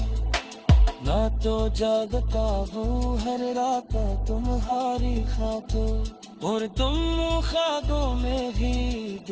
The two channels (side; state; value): both; identical; correlation 1.00